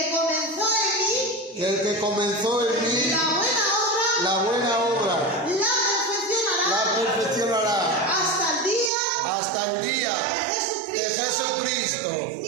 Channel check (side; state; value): left; drops out; at 8.9 s